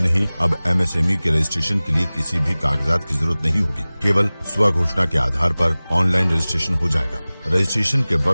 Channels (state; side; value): inverted; both; correlation -0.99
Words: नहीं, अब MSME के रजिस्ट्रेशन के लिए किसी भी कागजात की जरूरत नहीं होगी। केवल स्वघोषणा के आधार पर ऑनलाइन रजिस्ट्रेशन हो जाएगा। रजिस्ट्रेशन के